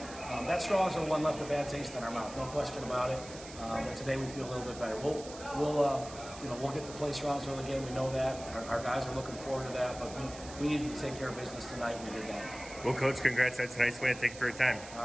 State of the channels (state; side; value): noise; right; hiss, 15 dB below the sound